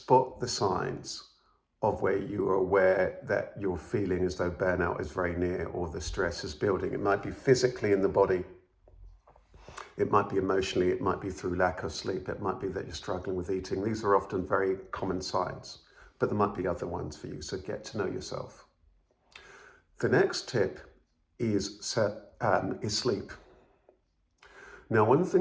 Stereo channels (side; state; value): both; identical; correlation 1.00